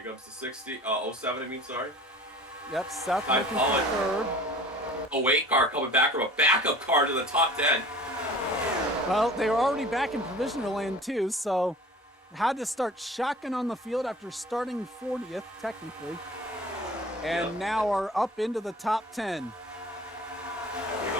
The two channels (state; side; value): normal; both; correlation 0.44